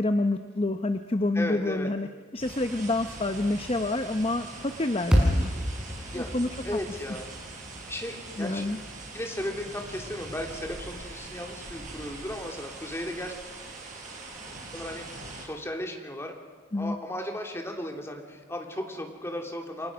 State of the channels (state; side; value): normal; both; correlation 0.75